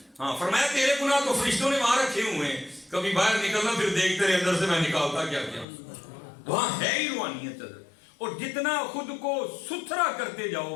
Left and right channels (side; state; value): right; drops out; at 5.7 s